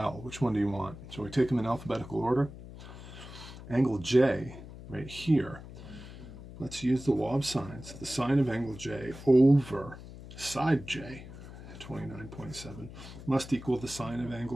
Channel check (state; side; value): noise; left; hum, 14 dB below the sound